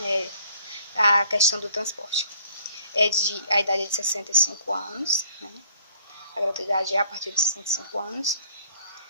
a questão do transporte. A idade é de 65 anos, a gratuidade é a partir de 65 anos.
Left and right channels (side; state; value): both; inverted; correlation -0.58